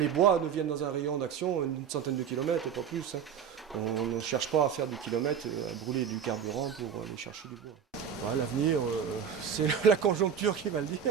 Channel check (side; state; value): left; quieter; 7.8 dB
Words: bois nous viennent dans un rayon d'action, une centaine de kilomètres, pas plus. Hein. On ne cherche pas à faire des kilomètres, à brûler du carburant pour aller chercher du bois. Ouais, l'avenir, c'est la conjoncture qui va le dire,